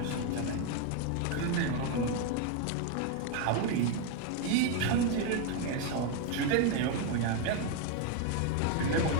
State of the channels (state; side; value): different; both; correlation 0.01